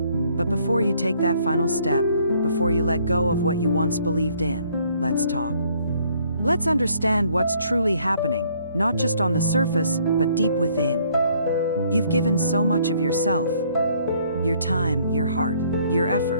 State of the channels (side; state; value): both; inverted; correlation -0.64